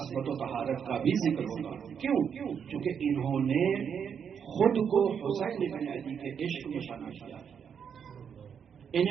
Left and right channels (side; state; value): left; quieter; 7.4 dB